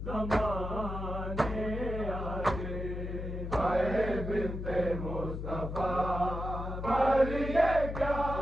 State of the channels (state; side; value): noise; left; hum, 5 dB below the sound